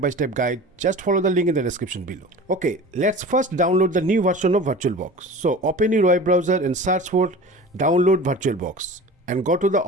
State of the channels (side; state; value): both; normal; correlation 0.37